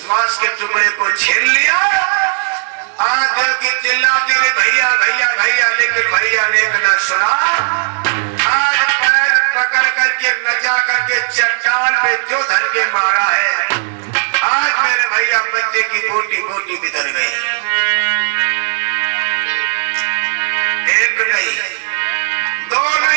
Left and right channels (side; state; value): left; silent; 63 dB below the other